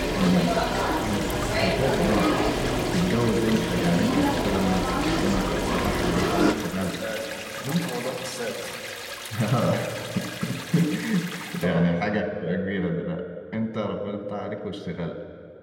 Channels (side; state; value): both; identical; correlation 1.00